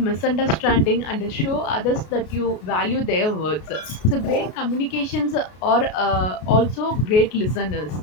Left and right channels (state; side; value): late; right; 33 ms